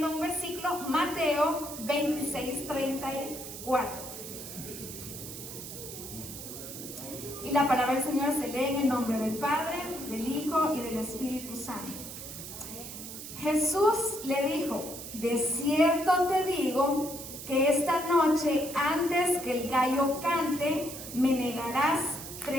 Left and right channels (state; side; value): noise; right; hiss, 10 dB below the sound